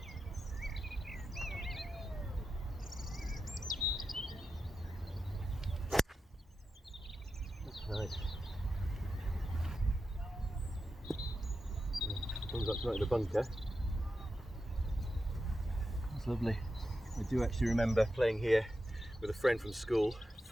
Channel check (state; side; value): normal; both; correlation 0.89